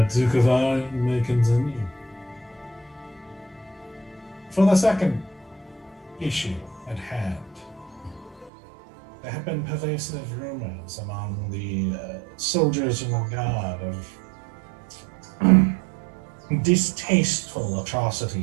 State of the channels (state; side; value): drops out; left; at 8.5 s